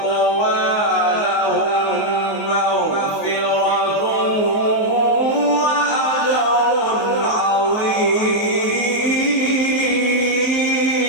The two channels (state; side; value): late; right; 19 ms